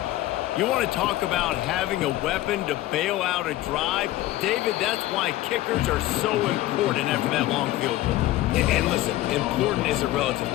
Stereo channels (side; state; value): right; quieter; 15.7 dB